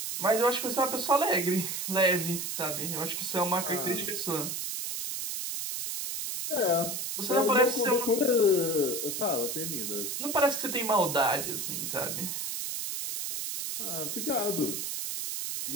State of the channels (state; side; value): noise; right; hiss, 3 dB below the sound